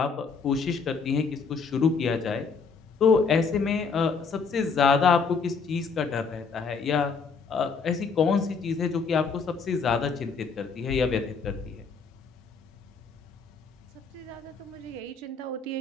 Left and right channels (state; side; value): quieter; right; 5.1 dB